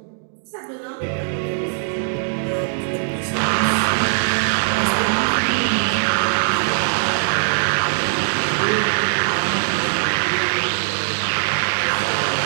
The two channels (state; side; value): silent; left; digital silence